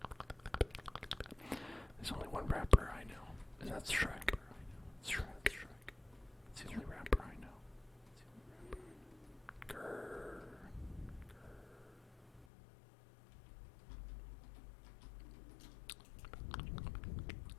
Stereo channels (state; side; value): drops out; right; at 12.5 s